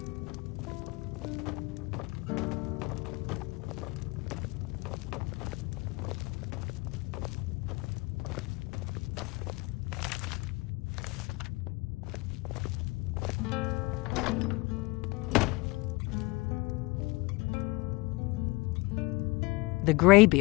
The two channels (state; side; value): quieter; right; 24.0 dB